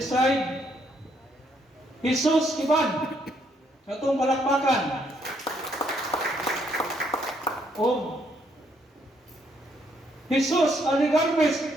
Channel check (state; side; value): normal; both; correlation 0.71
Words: Jesus Kiban. Sa itong palakpakan. O Jesus